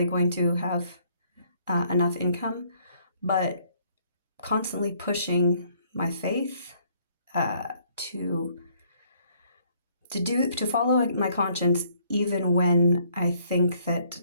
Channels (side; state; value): both; inverted; correlation -0.65